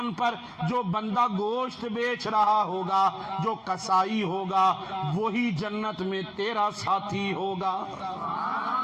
پر جو بندہ گوشت بیچ رہا ہوگا، جو کسائی ہوگا، وہی جنت میں تیرا ساتھی ہوگا۔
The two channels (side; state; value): both; identical; correlation 1.00